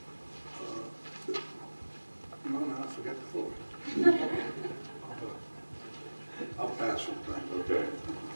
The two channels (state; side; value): inverted; both; correlation -1.00